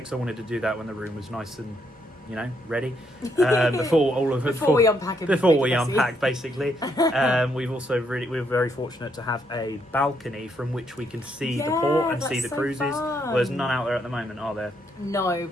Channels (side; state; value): both; normal; correlation 0.74